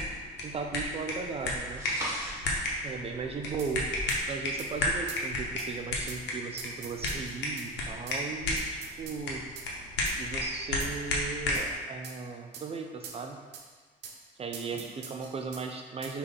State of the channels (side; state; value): both; normal; correlation 0.19